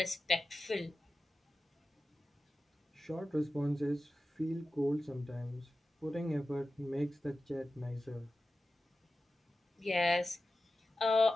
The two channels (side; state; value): both; normal; correlation 0.94